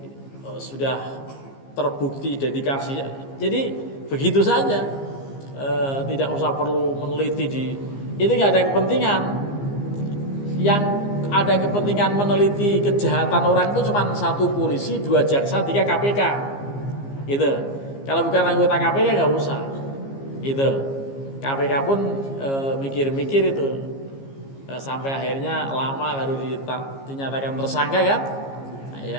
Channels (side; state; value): right; late; 15 ms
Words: sudah terbukti dedikasinya. Jadi begitu saja, tidak usah perlu meneliti itu nggak ada kepentingan. Yang ada kepentingan meneliti kejahatan orang itu cuma 1 polisi, 2 jaksa, 3 KPK. Gitu. Kalau bukan anggota KPK nggak usah. Itu KPK pun mikir-mikir itu sampai akhirnya lama baru dinyatakan tersangka kan. Nah, ya